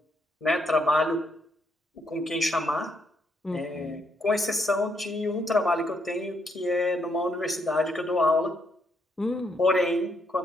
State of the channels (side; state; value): both; normal; correlation 0.75